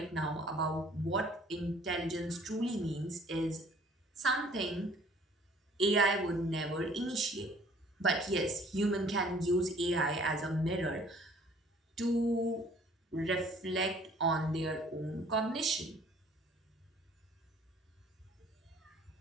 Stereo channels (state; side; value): normal; both; correlation 0.55